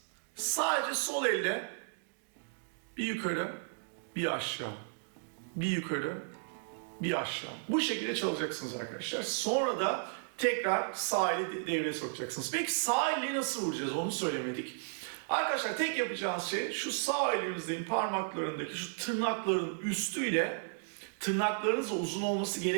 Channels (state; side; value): silent; left; digital silence